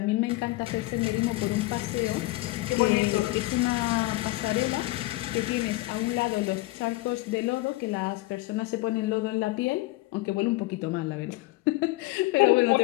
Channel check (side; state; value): right; quieter; 20.0 dB